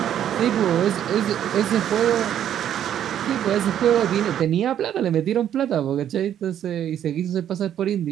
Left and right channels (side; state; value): left; quieter; 10.3 dB